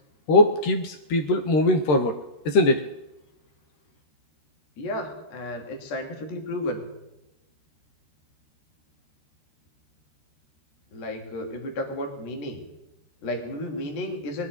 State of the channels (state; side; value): late; right; 13 ms